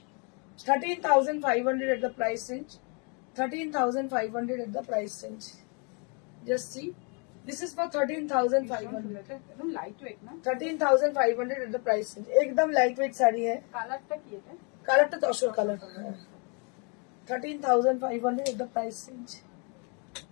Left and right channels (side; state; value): right; quieter; 35.6 dB